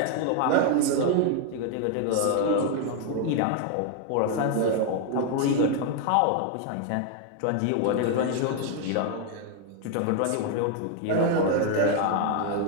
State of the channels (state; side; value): different; both; correlation 0.00